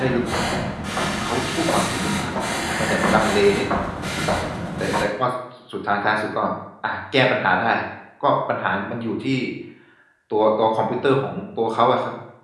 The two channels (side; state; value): both; identical; correlation 1.00